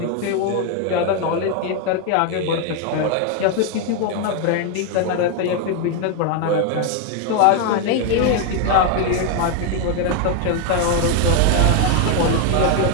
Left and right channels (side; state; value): both; different; correlation 0.01